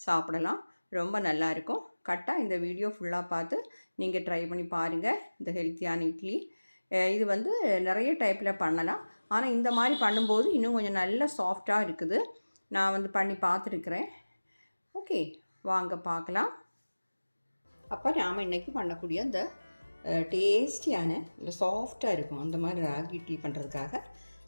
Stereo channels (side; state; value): both; inverted; correlation -1.00